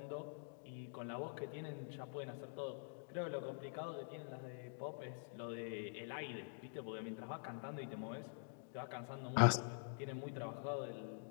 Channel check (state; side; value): silent; right; digital silence